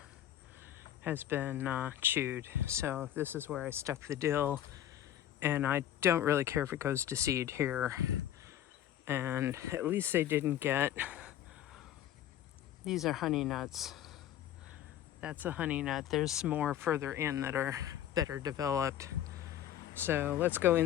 has been chewed. So this is where I stuck the dill. And I don't really care if it goes to seed here. And at least they didn't get... These are honey nuts. That's a honey nut. There's more further in that are better developed. So let's go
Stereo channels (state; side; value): quieter; right; 11.6 dB